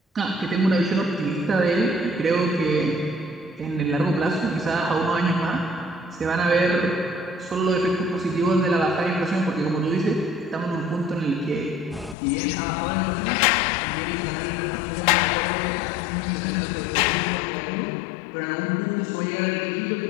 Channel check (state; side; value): drops out; right; at 12.2 s